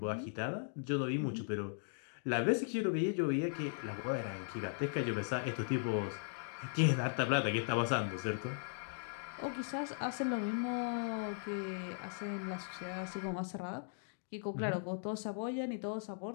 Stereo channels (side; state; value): right; silent; digital silence